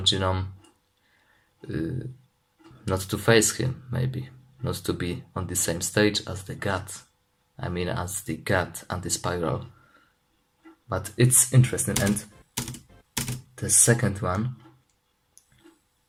Genome not to face him, maybe not to be on the same stage as the god. I mean, as the god anti-spiral. But it's interesting. And the second one,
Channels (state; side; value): identical; both; correlation 1.00